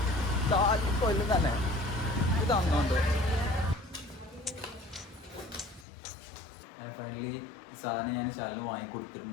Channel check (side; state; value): right; drops out; at 5.9 s